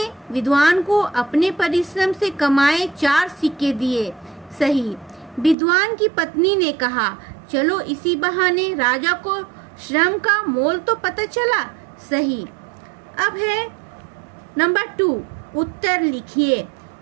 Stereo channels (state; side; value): drops out; left; at 5.6 s